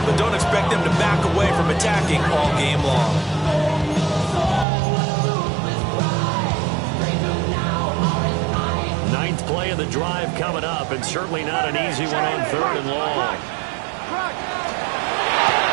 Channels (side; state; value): left; drops out; at 4.7 s